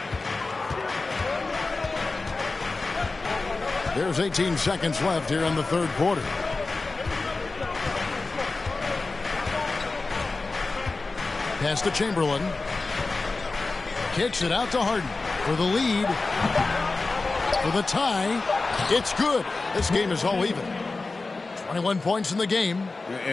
There's 18 seconds left here in the third quarter. Pass to Chamberlain. Kicks it out to Harden for the lead. For the tie. It's good. This game is all even. 21 points in the game.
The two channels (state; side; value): quieter; right; 3.6 dB